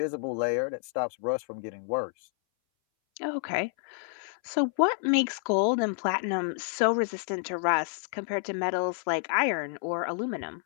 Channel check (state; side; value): silent; right; 59 dB below the other